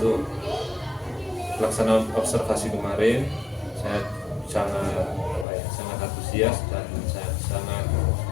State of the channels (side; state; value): right; drops out; at 5.5 s